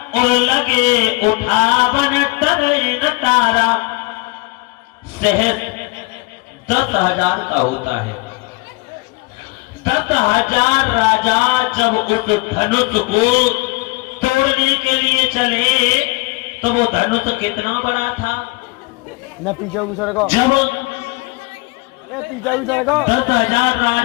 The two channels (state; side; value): quieter; right; 25.0 dB